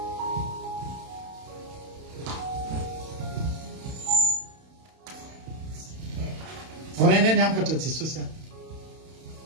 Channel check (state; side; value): late; left; 31 ms